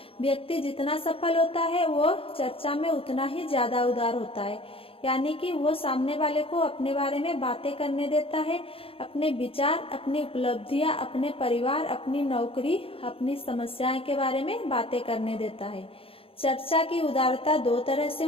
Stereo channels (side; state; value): right; late; 0.27 ms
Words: व्यक्ति जितना सफल होता है वो चर्चा में उतना ही ज्यादा उदार होता है, यानी कि वो सामने वाले को अपने बारे में बातें करने देता है, अपने विचार, अपनी उपलब्धियां, अपने परिवार, अपनी नौकरी, अपनी समस्याएं के बारे में बातें करने देता है। चर्चा की उदारता 2 तरह से